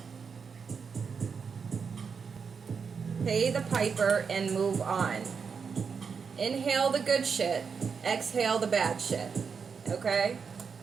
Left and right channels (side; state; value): left; quieter; 5.9 dB